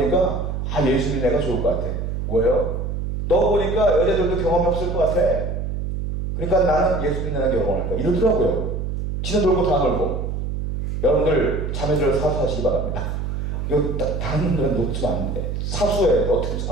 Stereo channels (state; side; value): noise; right; hum, 3 dB below the sound